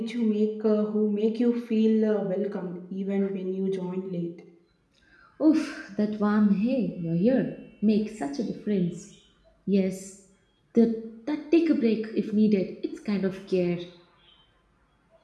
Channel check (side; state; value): both; identical; correlation 1.00